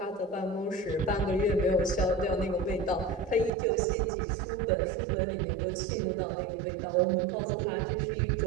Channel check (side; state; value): left; drops out; at 3.5 s